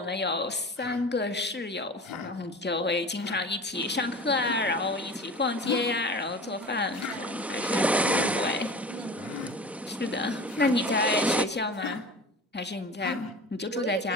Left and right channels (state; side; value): normal; both; correlation 0.36